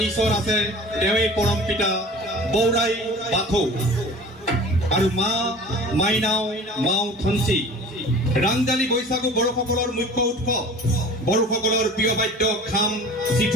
ঈশ্বৰ আছে, তেওঁৱেই পৰম পিতা বৌৰাই বাথৌ। আৰু মা মাইনাও, মাও থঞ্চি। ৰাংজালি বৈশাগু বড়োসকলৰ মুখ্য উৎসৱ। বড়োসকলৰ প্ৰিয় বাদ্য খাম,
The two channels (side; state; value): both; normal; correlation 0.41